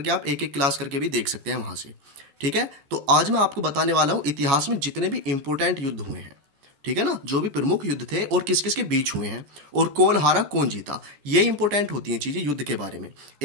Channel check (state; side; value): late; left; 13 ms